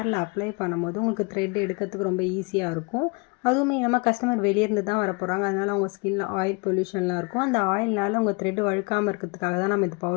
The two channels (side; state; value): right; quieter; 30.7 dB